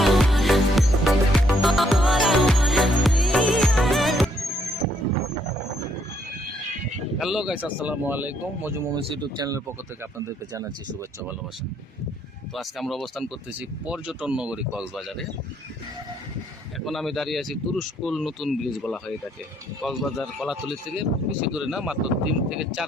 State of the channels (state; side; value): normal; both; correlation 0.70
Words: guys, আসসালামু আলাইকুম। মজু moments YouTube চ্যানেলের পক্ষ থেকে আপনাদেরকে জানাচ্ছি শুভেচ্ছা ভালোবাসা। তো আজকে আমরা অবস্থান করতেছি পর্যটন নগরী কক্সবাজারে। এখন আমি দাঁড়িয়ে আছি তুরস্কুল নতুন ব্রিজ বলা হয় এটাকে। কক্সবাজার কলাতলি থেকে বেশি দূরে না, মাত্র 3 থেকে